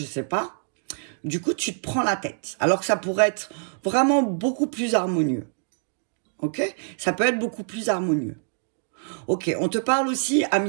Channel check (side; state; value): left; silent; digital silence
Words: sais pas. Du coup, tu te prends la tête. Alors que ça pourrait être vraiment beaucoup plus harmonieux. Ok? Ça peut être beaucoup plus harmonieux. Ok, on te parle aussi, ami